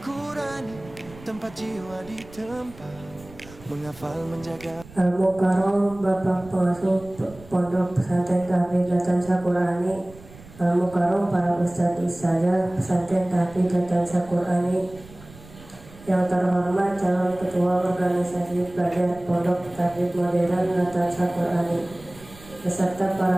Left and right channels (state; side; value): noise; right; rumble, 20 dB below the sound